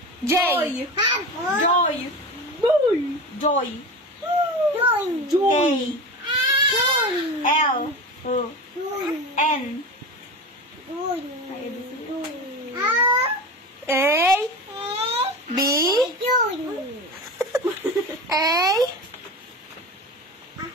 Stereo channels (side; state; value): both; normal; correlation 0.28